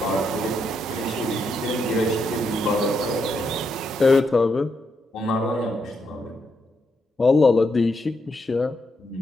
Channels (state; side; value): normal; both; correlation 0.80